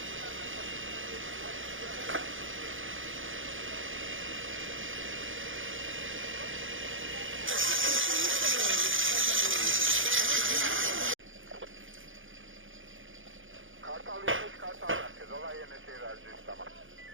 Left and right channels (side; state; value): left; late; 0.58 ms